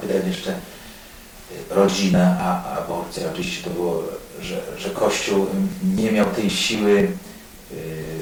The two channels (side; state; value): both; identical; correlation 1.00